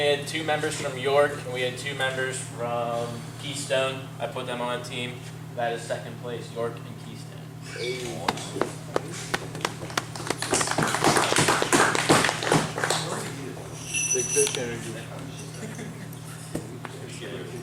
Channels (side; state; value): both; identical; correlation 1.00